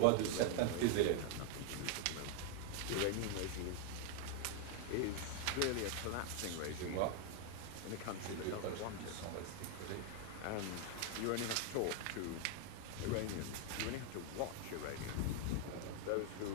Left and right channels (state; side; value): different; both; correlation 0.00